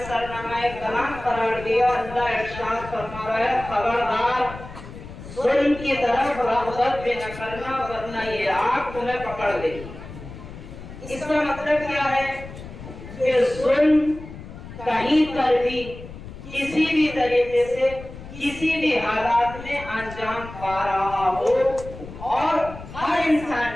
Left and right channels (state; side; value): noise; left; rumble, 14 dB below the sound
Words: सरनामा कलाम करार दिया, अल्लाह इरशाद फरमा रहा है, खबरदार जुल्म की तरफ रग़बत भी न करना, वरना ये आग तुम्हें पकड़ लेगी। इसका मतलब क्या है कि जुल्म कहीं पर भी किसी भी तरीके से किसी भी हालात में अंजाम पा रहा हो, और हर इंसान